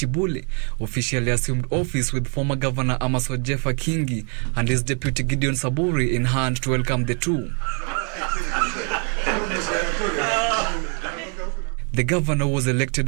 officially assumed office with former Governor Amaso Jeffa Kingi and his deputy Gideon Saburi in hand to welcome the two. The governor was elected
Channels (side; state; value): left; quieter; 38.5 dB